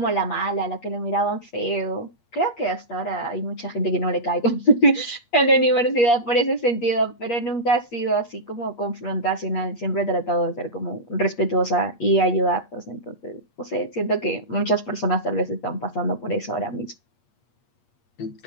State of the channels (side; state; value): right; late; 8.5 ms